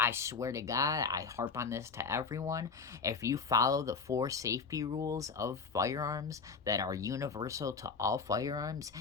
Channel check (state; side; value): quieter; right; 5.1 dB